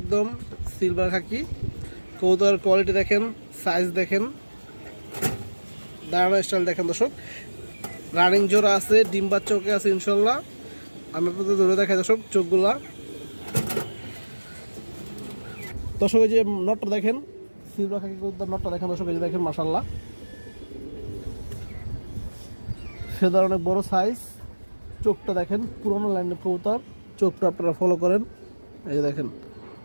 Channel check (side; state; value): both; inverted; correlation -1.00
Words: সিলভার খাকি কবুতর। কোয়ালিটি দেখেন, সাইজ দেখেন, দাঁড়ানো স্টাইল দেখেন দর্শক। রানিং জোড়া আছে, ডিম্বার চোখে আছে ইনশাল্লাহ। আমি আপনাদের ধরে দেখাই দর্শক চোখগুলা দর্শক। এই যে নটটা দেখেন, সিলভার খাকি কবুতর নটটা দেখেন দর্শক। এই যে দেখেন মাশাআল্লাহ, ফেদার অনেক বড় সাইজ। চোখটা দেখেন, পুরোনো লাইনের কবুতর, চোখটা আপনারা ফলো করেন। এই যে দেখেন